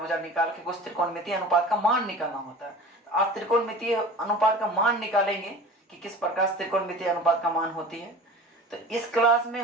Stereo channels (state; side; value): normal; both; correlation 0.38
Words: निकाल के कुछ त्रिकोणमितीय अनुपात का मान निकालना होता है। तो आप त्रिकोणमितीय अनुपात का मान निकालेंगे कि किस प्रकार से त्रिकोणमितीय अनुपात का मान होती है। तो इस क्लास में